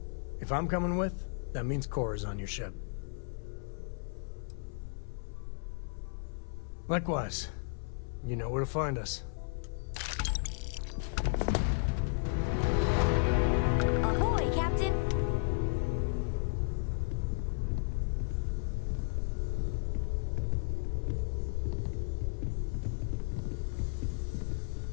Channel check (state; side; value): silent; right; 55 dB below the other